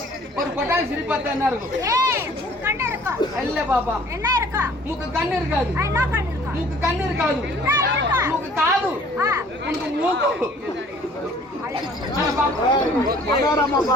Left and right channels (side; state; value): both; normal; correlation 0.54